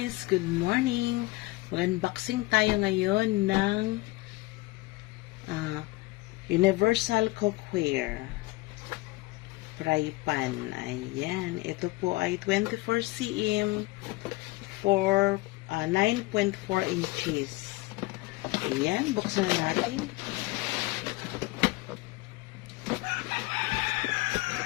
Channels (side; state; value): right; quieter; 21.6 dB